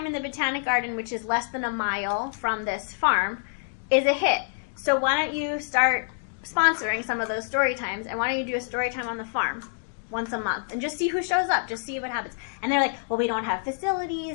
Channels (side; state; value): right; silent; digital silence